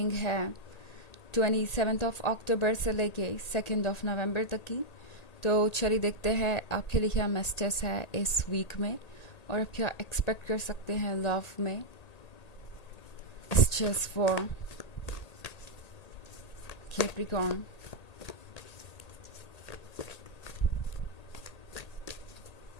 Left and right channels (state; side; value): late; right; 1.8 ms